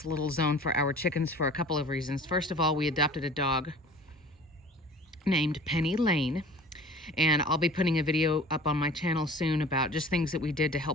little zone for our chickens for a couple of reasons. First of all, we adopted a dog named Penny Lane, and I'll be putting a video up on my channel soon about just things that we did to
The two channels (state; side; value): normal; both; correlation 0.44